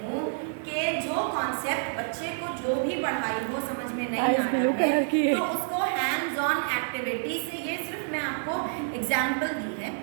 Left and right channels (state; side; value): silent; left; 59 dB below the other